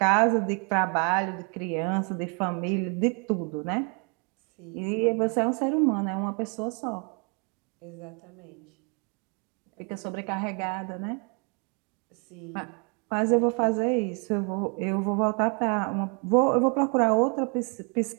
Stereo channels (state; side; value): quieter; left; 36.8 dB